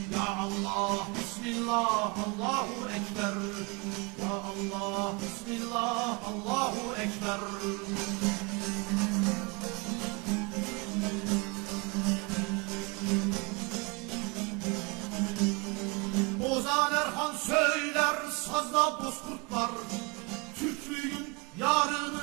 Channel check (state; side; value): quieter; left; 29.1 dB